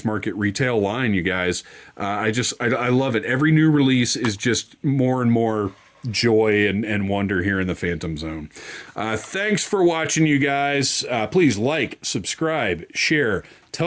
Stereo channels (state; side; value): identical; both; correlation 1.00